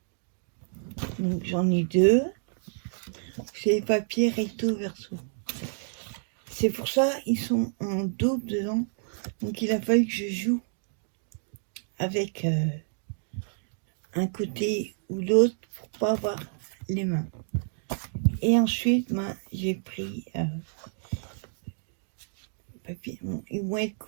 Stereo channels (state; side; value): silent; left; digital silence